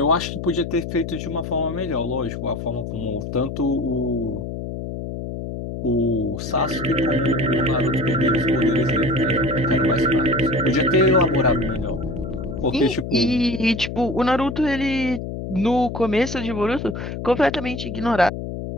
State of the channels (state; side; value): noise; left; hum, 6 dB below the sound